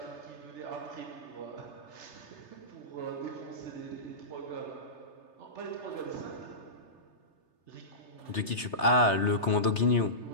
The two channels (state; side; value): late; right; 3.3 ms